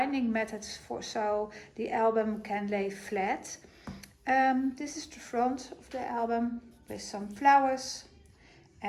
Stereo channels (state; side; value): identical; both; correlation 1.00